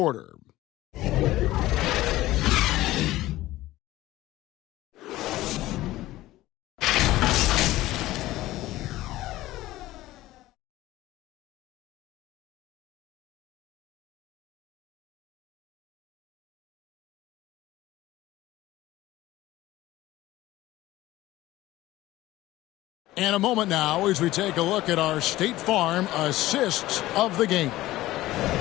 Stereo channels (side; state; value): right; quieter; 16.5 dB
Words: And a moment now as we take a look at our State Farm assists of the game.